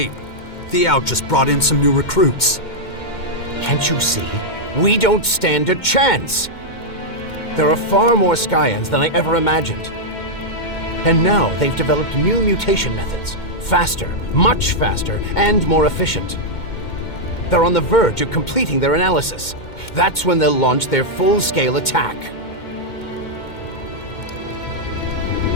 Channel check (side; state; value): right; late; 2.2 ms